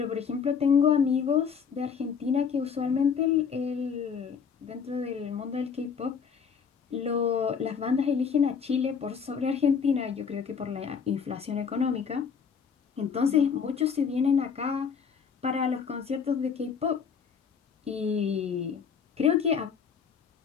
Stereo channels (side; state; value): right; quieter; 6.6 dB